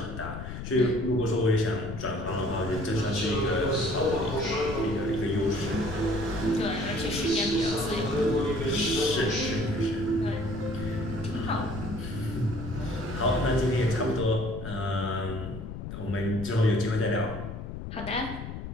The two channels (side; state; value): left; noise; rumble, 8 dB below the sound